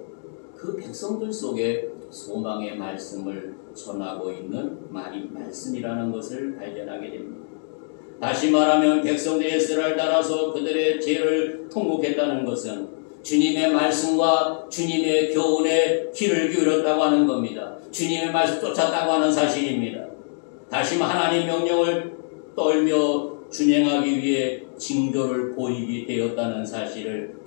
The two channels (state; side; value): silent; right; digital silence